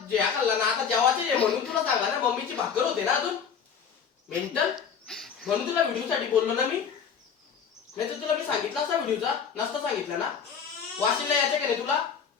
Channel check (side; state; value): right; quieter; 7.0 dB